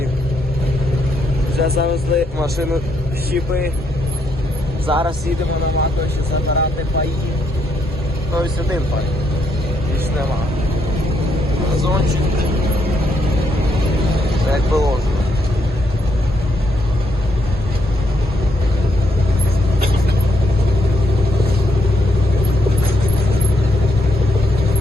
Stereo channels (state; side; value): normal; both; correlation 0.76